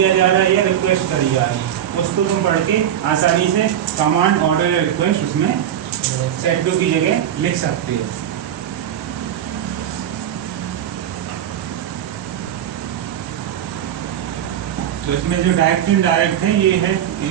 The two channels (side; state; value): left; quieter; 10.3 dB